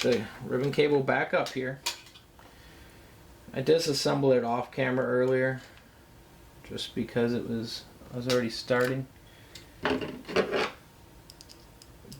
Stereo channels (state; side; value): identical; both; correlation 1.00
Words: ribbon cable back up here. I disassembled it off camera earlier, just because I was already starting.